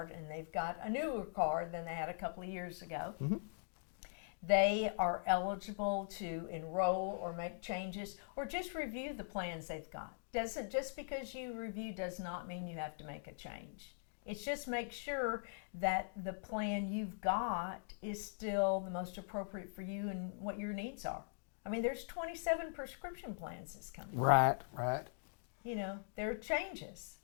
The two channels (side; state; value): right; silent; digital silence